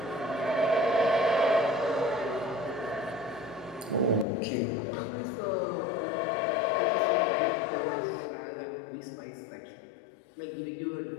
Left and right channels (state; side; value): drops out; right; at 4.2 s